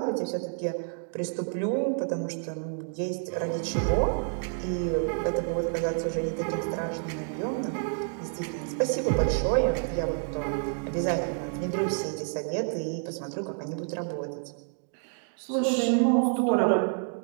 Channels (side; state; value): left; silent; 59 dB below the other